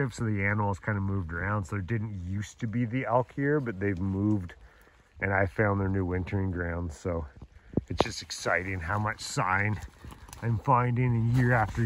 so the animals kind of moved around. So there didn't used to be the elk here, but they've moved, and I found their new wintering grounds. So it's just exciting how much sign I'm finding, and year after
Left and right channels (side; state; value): both; identical; correlation 1.00